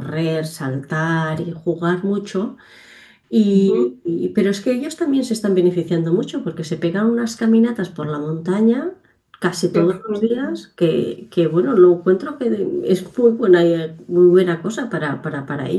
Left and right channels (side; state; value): both; identical; correlation 1.00